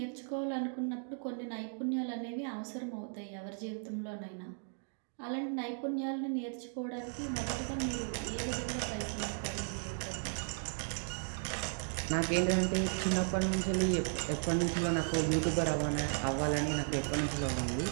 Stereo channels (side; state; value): left; silent; 54 dB below the other